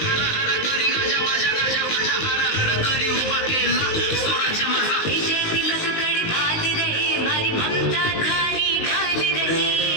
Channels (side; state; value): right; late; 19 ms